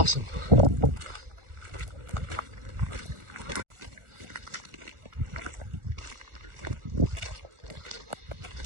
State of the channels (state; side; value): late; left; 1.4 ms